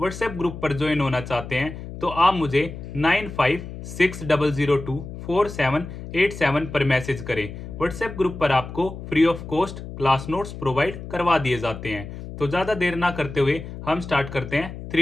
ग्रुप पर ज्वाइन होना चाहते हैं तो आप मुझे 9560024787 पर मैसेज करें। व्हाट्सएप ग्रुप पर आपको free of cost class notes provide करवा दिए जाते हैं। तो ज़्यादा देर ना करते हुए हम स्टार्ट करते हैं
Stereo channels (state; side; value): noise; left; hum, 11 dB below the sound